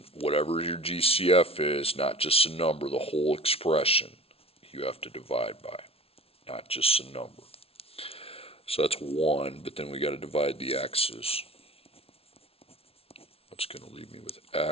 whatever your GCF is, not just a number, the whole expression, you have to divide by, not just a number. So that's 1, but then we got to divide the x's. That's going to leave me with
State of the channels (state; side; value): late; right; 0.28 ms